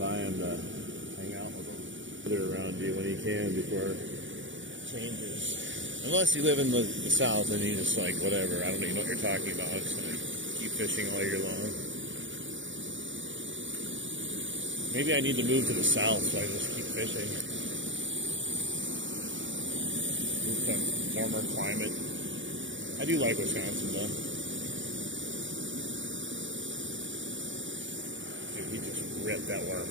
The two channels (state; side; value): late; left; 0.56 ms